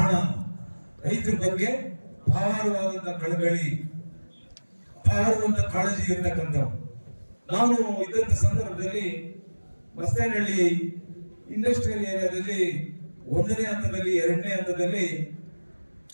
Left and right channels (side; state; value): both; inverted; correlation -1.00